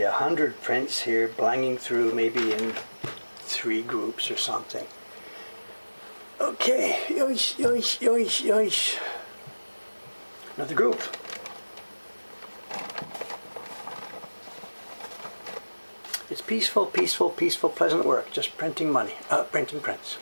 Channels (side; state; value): both; inverted; correlation -1.00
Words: 100 prints here, blanging through maybe in 3 groups or something. Okay, yoish, yoish, yoish, yoish. Another group. It's peaceful, peaceful, peaceful, pleasant work. Just printing money, printing prints.